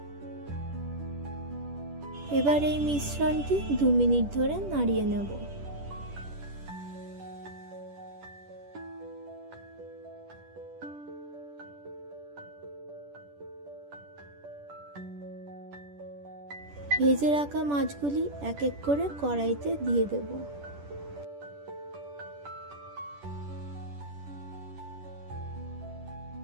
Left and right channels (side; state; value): left; late; 10 ms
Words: এবার এই মিশ্রণটি 2 মিনিট ধরে নাড়িয়ে নেব। ভেজে রাখা মাছগুলি এক এক করে কড়াইতে দিয়ে দেব।